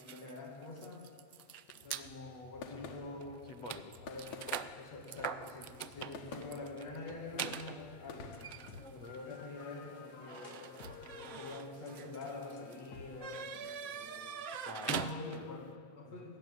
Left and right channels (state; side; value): late; right; 7.8 ms